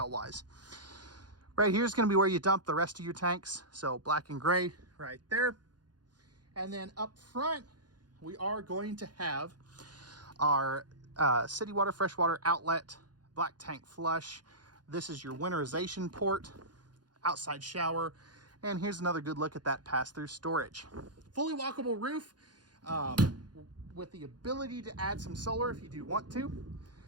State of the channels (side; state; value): left; late; 0.70 ms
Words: wise. Right here is going to be where you dump the rest of your tanks. So black and gray right there. And then up front, we are going to have our city water, freshwater outlet, black tank flush. This is your winterization port, outside shower. And here's another good look at that pass-through storage. Fully walkable roof. With the ability to add some solar if you do want to.